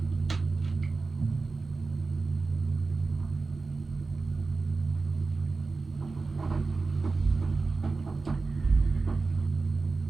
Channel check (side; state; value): left; quieter; 3.9 dB